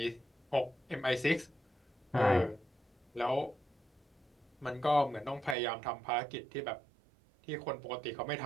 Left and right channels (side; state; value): left; drops out; at 5.6 s